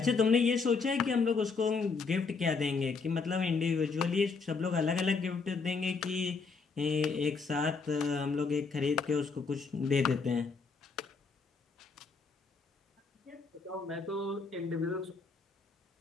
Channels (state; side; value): quieter; right; 4.7 dB